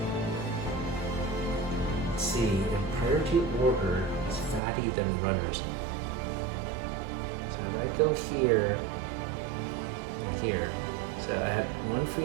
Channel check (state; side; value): drops out; left; at 4.6 s